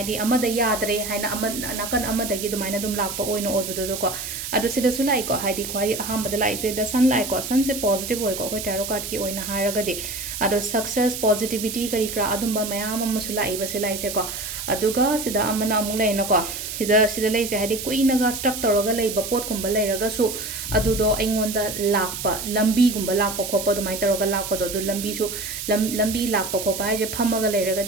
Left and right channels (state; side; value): noise; right; hiss, 6 dB below the sound